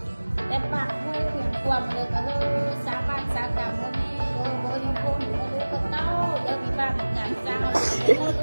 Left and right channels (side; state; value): both; inverted; correlation -1.00